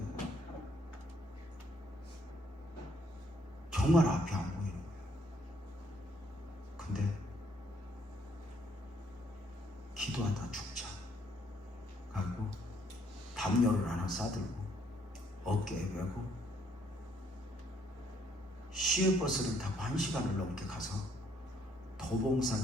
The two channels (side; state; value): both; normal; correlation 0.67